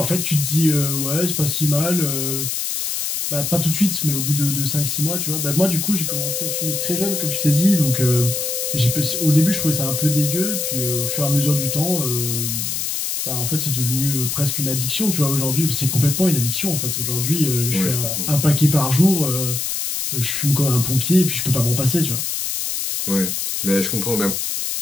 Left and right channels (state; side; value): noise; left; hiss, 2 dB below the sound